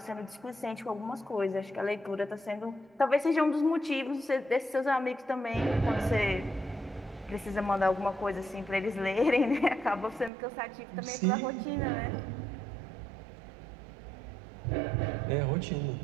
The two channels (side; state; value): left; drops out; at 10.3 s